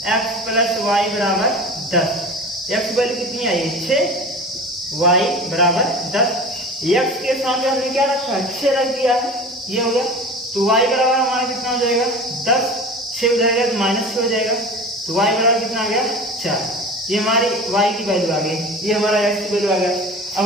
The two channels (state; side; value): normal; both; correlation 0.35